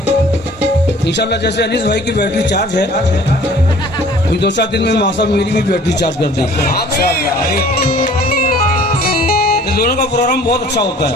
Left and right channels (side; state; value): both; normal; correlation 0.51